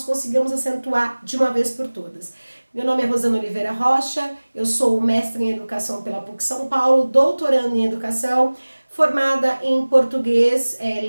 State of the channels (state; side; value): inverted; both; correlation -1.00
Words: consigamos acentuar de uma vez por todas. Meu nome é Rosana Oliveira Rocha, eu sou mestre em educação pela PUC São Paulo, doutorando em educação, formada em português,